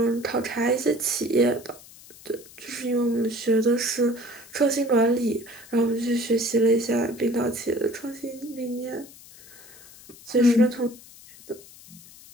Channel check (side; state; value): left; noise; hiss, 21 dB below the sound